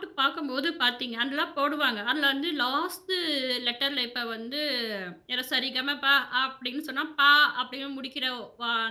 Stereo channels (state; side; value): identical; both; correlation 1.00